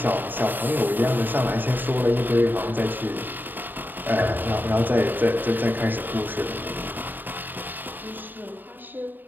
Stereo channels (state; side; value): late; left; 0.090 ms